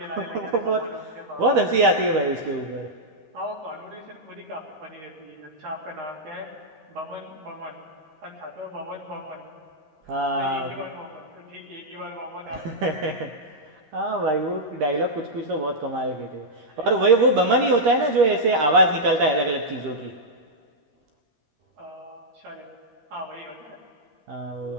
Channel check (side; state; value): left; late; 13 ms